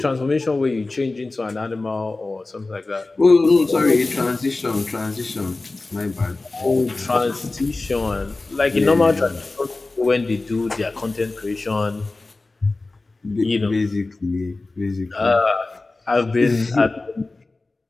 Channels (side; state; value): right; quieter; 3.3 dB